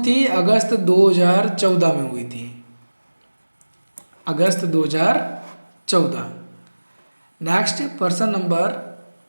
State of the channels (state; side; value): inverted; both; correlation -1.00